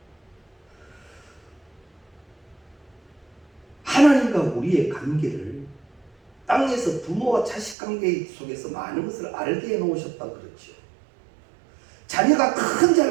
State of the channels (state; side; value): drops out; left; at 7.8 s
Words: 하나님과 우리의 관계를 땅에서 부모와 자식 관계 속에서 많은 것을 알게 해놓으셨다 그렇죠. 자녀가 큰